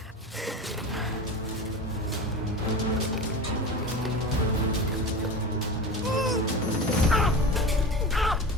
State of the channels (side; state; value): both; normal; correlation 0.29